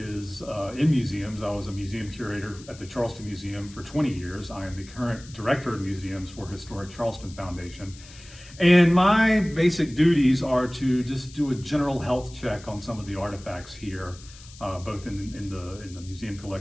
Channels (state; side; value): noise; left; hiss, 20 dB below the sound